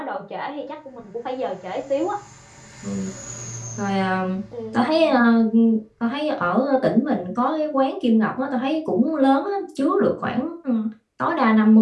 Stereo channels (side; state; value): both; identical; correlation 1.00